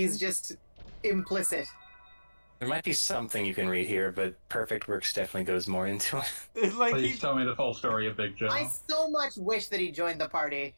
just implicit. There might be something you can read here, but Perfect Works definitely goes more into it. It's like Please tell me the full story of Big Joe. I so much wish that he joined the party.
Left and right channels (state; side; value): inverted; both; correlation -1.00